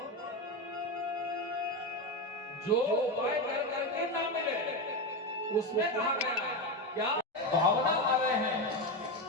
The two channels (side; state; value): both; normal; correlation 0.14